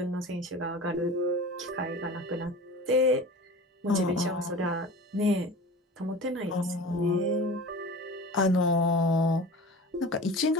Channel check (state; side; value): normal; both; correlation 0.37